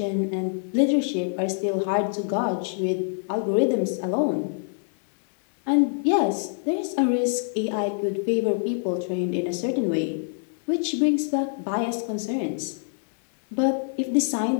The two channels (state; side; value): silent; right; digital silence